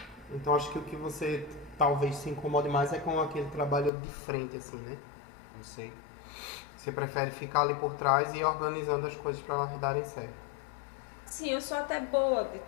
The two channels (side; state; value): right; drops out; at 3.9 s